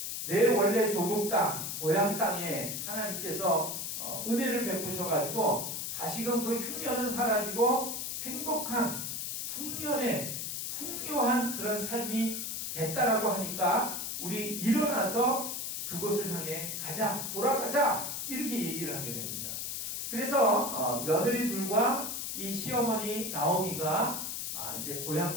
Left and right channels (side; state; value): left; noise; hiss, 4 dB below the sound